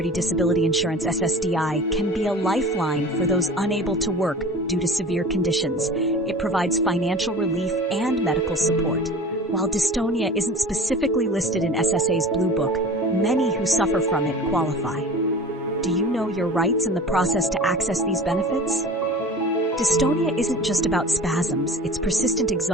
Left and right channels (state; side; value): normal; both; correlation 0.38